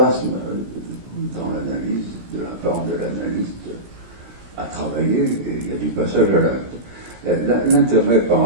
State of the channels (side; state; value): left; late; 17 ms